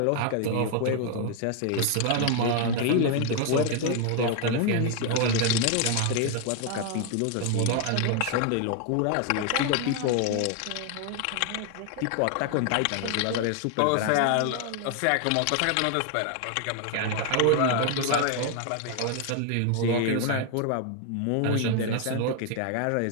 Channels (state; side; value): different; both; correlation 0.00